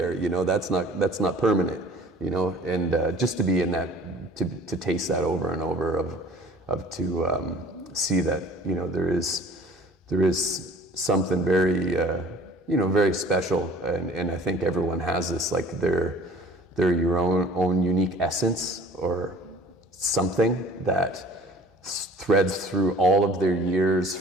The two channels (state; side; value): normal; both; correlation 0.48